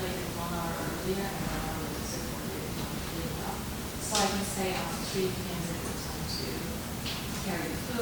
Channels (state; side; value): identical; both; correlation 1.00